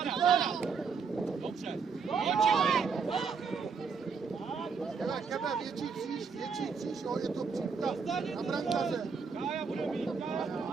Dobře. Kebe, větší kříž, jo, je to příklad na brankaře. Kája bude mít,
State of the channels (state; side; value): quieter; left; 5.6 dB